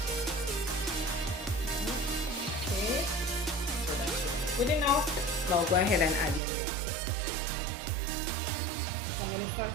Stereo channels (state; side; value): drops out; left; at 6.4 s